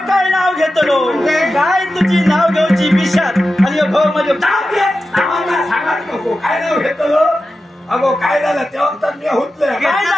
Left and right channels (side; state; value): both; normal; correlation 0.92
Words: काय नाव घेतलो काय तुझी नाव घेऊची विषात आणि ह्यो भाऊ म्हणजे नावाला सांगत नको काय नाव घेतलो अगो काय झालं तेव्हा तर मी हुतले काय